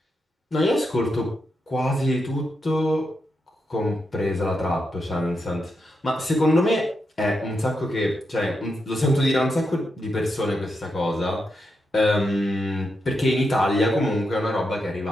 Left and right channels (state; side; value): normal; both; correlation 0.85